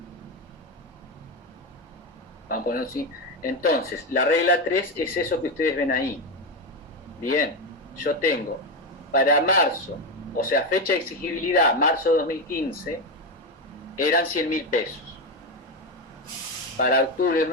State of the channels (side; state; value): both; normal; correlation 0.12